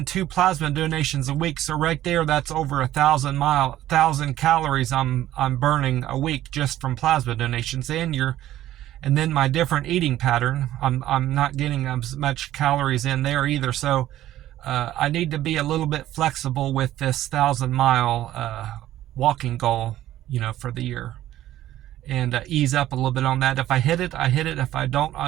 2 plasma donations a week. So right there, that's over 1,000 calories I'm burning a week just from plasma donations. And then my different eating pattern, I'm not getting as much calories in there either. So I need to be a little bit flexible with this 1,000-mile walking goal, for the year. And ease up a little bit on that. If I hit it, I hit it. If I don't, I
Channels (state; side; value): quieter; left; 13.6 dB